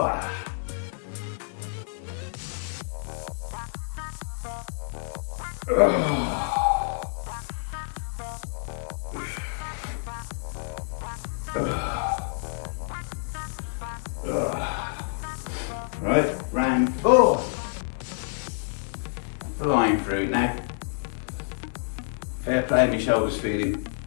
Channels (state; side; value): silent; right; digital silence